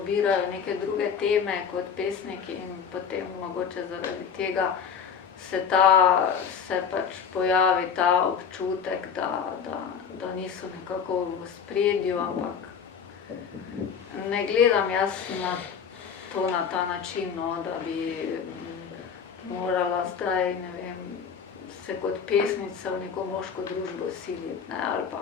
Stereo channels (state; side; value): quieter; right; 6.9 dB